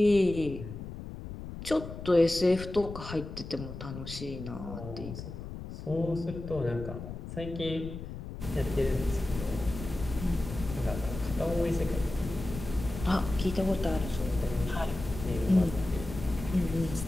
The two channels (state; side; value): noise; left; rumble, 9 dB below the sound